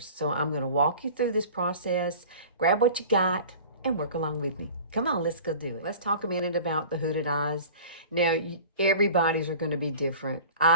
So I'm going to walk you through this process, grab what you got, and work along with me. Come on, let's go do it. Let's talk a minute about the hooded eyes. Now, everybody's are going to be different.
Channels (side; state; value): both; inverted; correlation -0.41